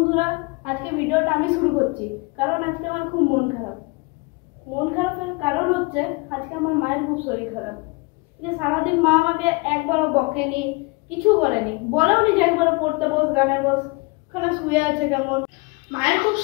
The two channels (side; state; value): right; quieter; 27.9 dB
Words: আজকে ভিডিওটা আমি শুরু করছি কারণ আজকে আমার খুব মন খারাপের কারণ হচ্ছে আজকে আমার মায়ের খুব শরীর খারাপ। যে সারাদিন মা আমাকে একবারও বকেনি, কিছু বলেনি, বলেও নি যে একবারও পড়তে বস, গানে বস, ওখানে শুয়ে আছে কেমন। মায়ের খুব